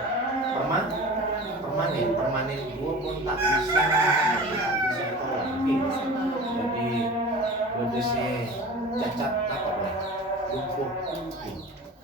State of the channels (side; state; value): both; normal; correlation 0.37